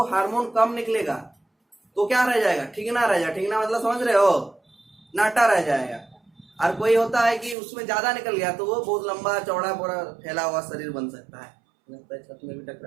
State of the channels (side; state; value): left; drops out; at 7.6 s